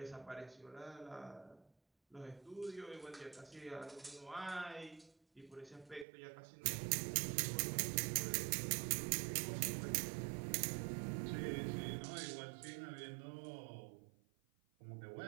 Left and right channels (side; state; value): left; drops out; at 6.1 s